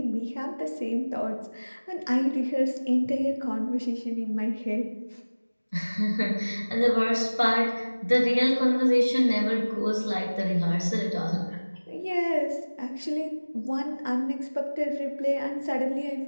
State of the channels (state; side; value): inverted; both; correlation -1.00